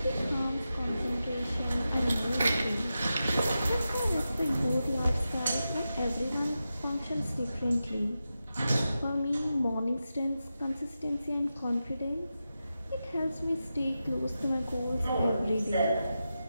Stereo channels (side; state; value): both; inverted; correlation -0.91